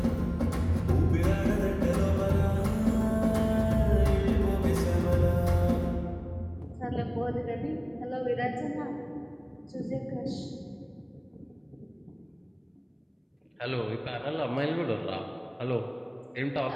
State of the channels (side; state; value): both; identical; correlation 1.00